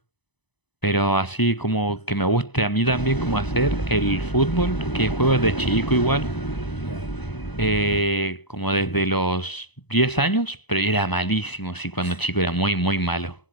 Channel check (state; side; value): late; right; 0.99 ms